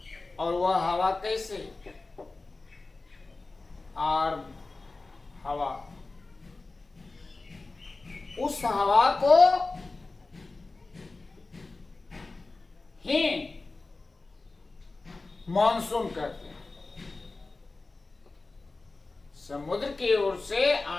और वह हवा कैसे? आर्द्र हवा। उस हवा को ही मानसून कहते हैं। समुद्र की ओर से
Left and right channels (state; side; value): quieter; right; 3.5 dB